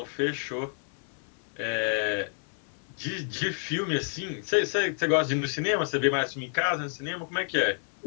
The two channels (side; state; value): right; silent; 58 dB below the other